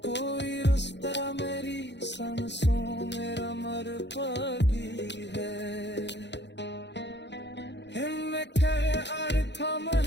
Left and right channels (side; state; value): right; late; 0.51 ms